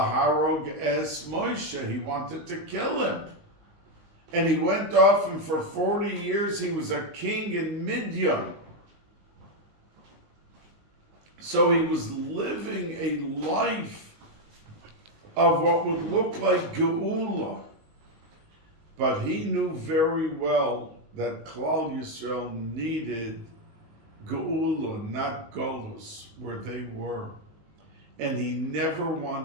es Moshe." He wanted to kill him. And he went off, and for 40 years he was a king in Midian. So he was living a life of what would look like Geula. But he knew very well that Klal Yisrael needed Geula, not Golus, where they were. And he never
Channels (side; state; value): left; late; 19 ms